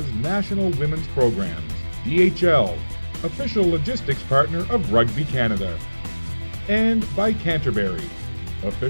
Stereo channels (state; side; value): inverted; both; correlation -1.00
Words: national women's programs. DHL, official logistics partner of Rugby Canada. And by Canterbury,